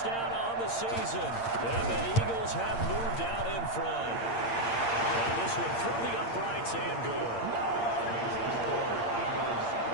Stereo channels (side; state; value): right; late; 8.7 ms